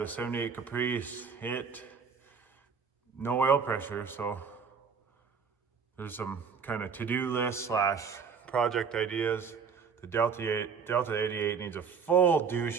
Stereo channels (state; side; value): quieter; left; 6.0 dB